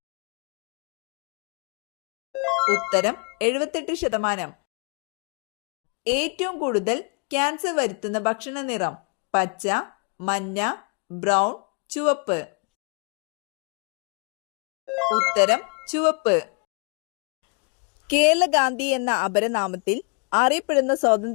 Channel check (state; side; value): quieter; right; 36.1 dB